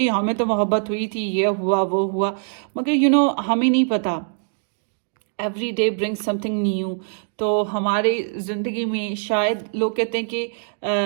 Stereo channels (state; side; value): silent; left; 61 dB below the other